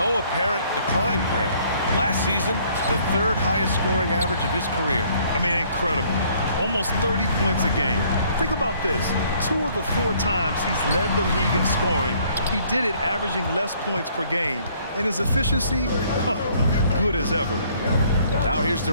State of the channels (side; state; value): both; inverted; correlation -0.62